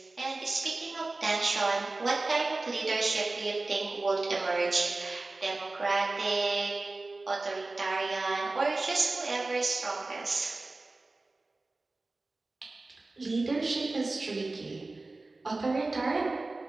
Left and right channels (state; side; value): quieter; left; 3.3 dB